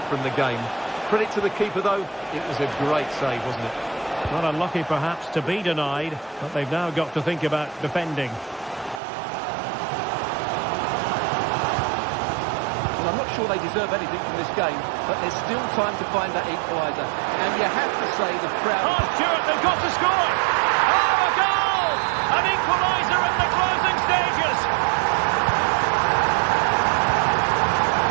from the game. Credit to the keeper, though. It was a great save, wasn't it? Not unlucky, perhaps, to be denied, but they've now got to think about defending. Well, I'm not sure they deserve anything from this game, but there's still time to find that equaliser. And you have to say the crowd... Oh, Stuart, they've got to score! Oh, a goal! An equaliser in the closing stages!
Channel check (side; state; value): left; drops out; at 9.0 s